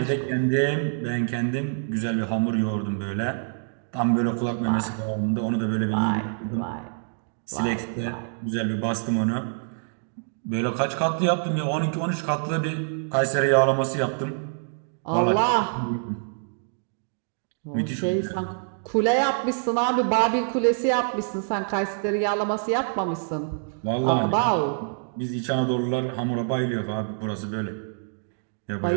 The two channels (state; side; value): silent; left; digital silence